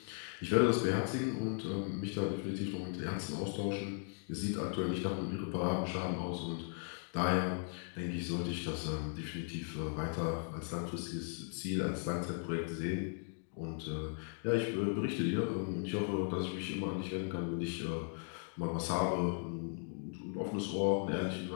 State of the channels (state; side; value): silent; right; 53 dB below the other